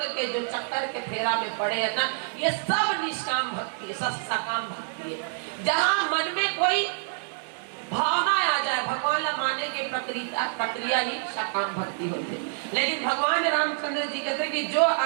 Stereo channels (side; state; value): left; silent; digital silence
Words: के जो चक्कर के फेरा में पड़े है ना, ये सब निष्काम भक्ति है, सब सकाम भक्ति है। जहाँ मन में कोई भावना आ जाए भगवान ला माने के प्रक्रिया ही सकाम भक्ति होती है। लेकिन भगवान रामचंद्र जी कहते कि जो